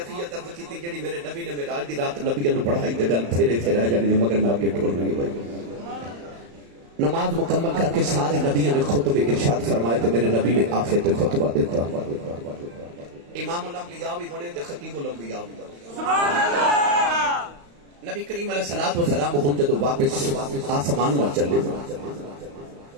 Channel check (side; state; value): left; late; 35 ms